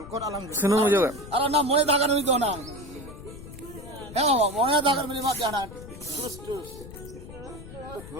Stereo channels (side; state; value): left; noise; rumble, 14 dB below the sound